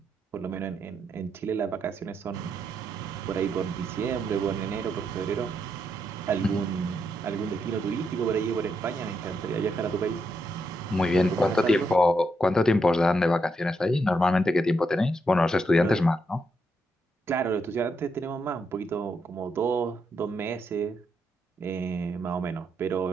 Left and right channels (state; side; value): normal; both; correlation 0.80